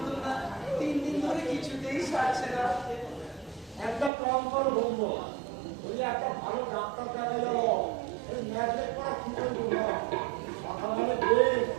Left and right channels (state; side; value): drops out; left; at 4.1 s